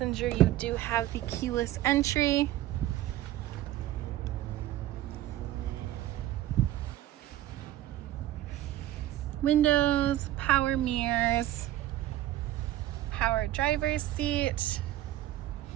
you do have the keyless entry. Windows, power mirrors, power driver's seat.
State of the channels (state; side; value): quieter; left; 14.1 dB